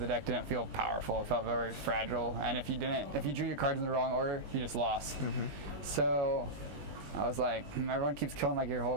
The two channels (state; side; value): late; left; 20 ms